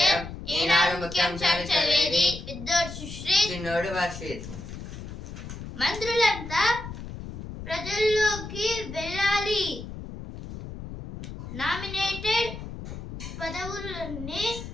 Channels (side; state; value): left; noise; rumble, 10 dB below the sound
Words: ఈనాడు ముఖ్యాంశాలు చదివేది పెద్దోడు సుశ్రీత్, చిన్నోడు వర్షిత్. మంత్రులంతా ప్రజల్లోకి వెళ్ళాలి. నామినేటెడ్ పదవులన్నీ